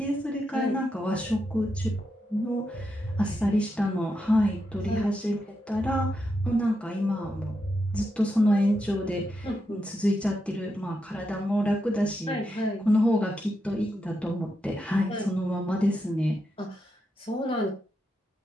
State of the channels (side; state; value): both; normal; correlation 0.84